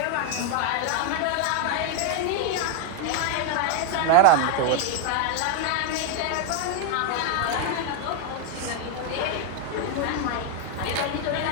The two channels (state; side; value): different; both; correlation 0.01